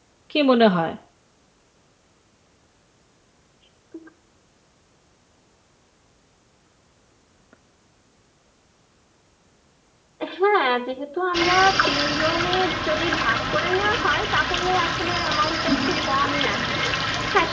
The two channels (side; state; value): both; identical; correlation 1.00